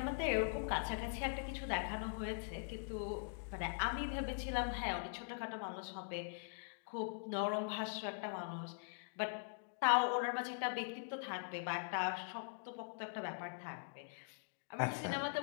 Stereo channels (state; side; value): silent; right; digital silence